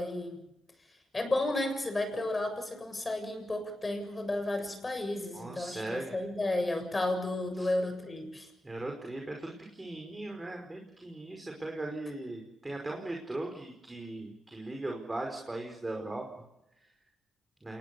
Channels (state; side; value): normal; both; correlation 0.90